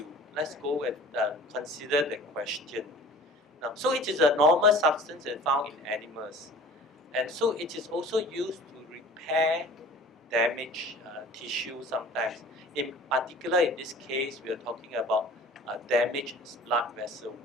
Let's go and consider the question. Now, so it is a normal substance that's found in animals. And so it is also used to repair damaged tissue sometimes. In particular, in this case, we are talking about damaged blood vessel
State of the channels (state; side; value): normal; both; correlation 0.44